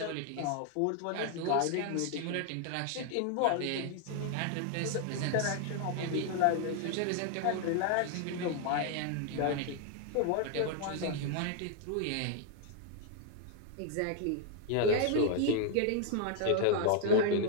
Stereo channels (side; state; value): both; different; correlation 0.00